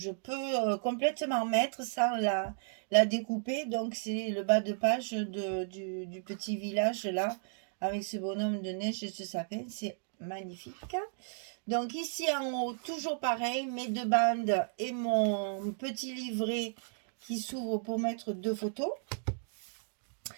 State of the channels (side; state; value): left; silent; digital silence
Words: peux complètement mettre sans la découper. Donc c'est le bas de page du petit village là, avec ce bonhomme de neige et ce sapin. C'est magnifique. Donc ici en haut, toujours pareil, mes deux bandes et mon petit livret qui s'ouvre pour mettre 2 photos.